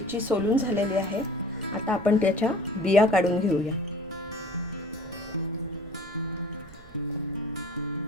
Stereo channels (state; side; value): noise; right; rumble, 22 dB below the sound